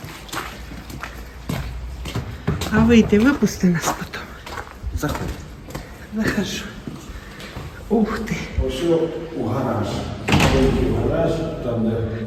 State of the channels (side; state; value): both; identical; correlation 1.00